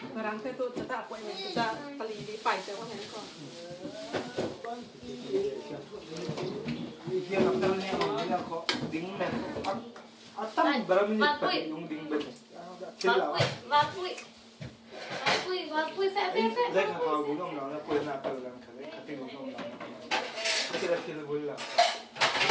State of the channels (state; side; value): identical; both; correlation 1.00